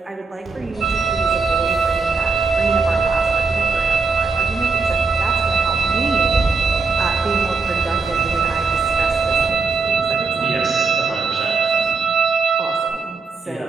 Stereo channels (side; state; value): left; quieter; 4.6 dB